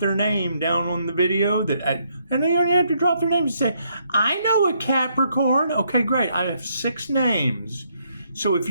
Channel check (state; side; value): inverted; both; correlation -0.73